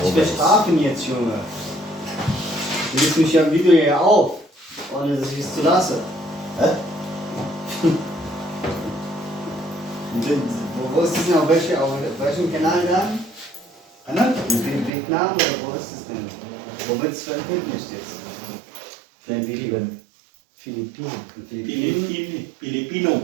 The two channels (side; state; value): left; drops out; at 14.9 s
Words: Wir guys. schlafen jetzt, Junge. Du legst mich ja im Video ja auf, ohne dass ich es zu lasse. Hä? Wo ist das denn? Auf welchem Kanal dann? Ano? In Vietnam oder wo ist das denn? Wo wird es veröffentlicht jetzt? Für ein Video. Filipino.